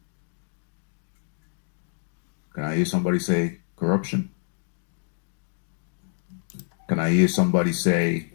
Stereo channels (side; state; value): right; silent; digital silence